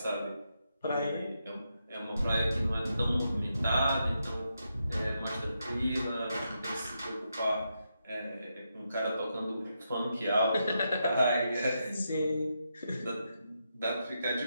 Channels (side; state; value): both; inverted; correlation -0.84